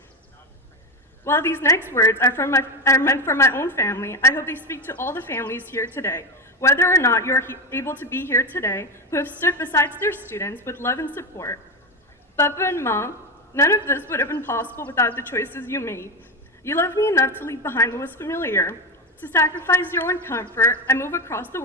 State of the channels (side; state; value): both; normal; correlation 0.16